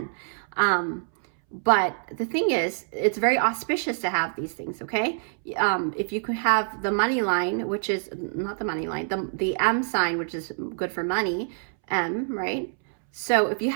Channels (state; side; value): silent; left; 61 dB below the other